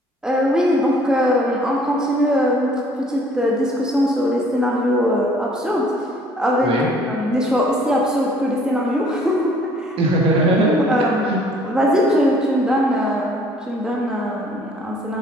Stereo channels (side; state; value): both; normal; correlation 0.57